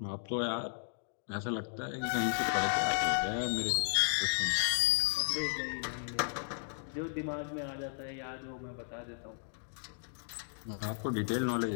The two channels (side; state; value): right; silent; digital silence